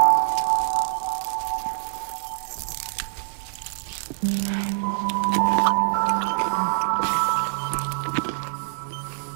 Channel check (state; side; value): silent; left; digital silence